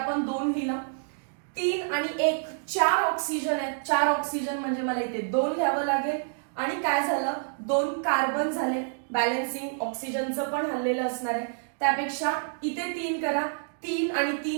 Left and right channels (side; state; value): left; silent; digital silence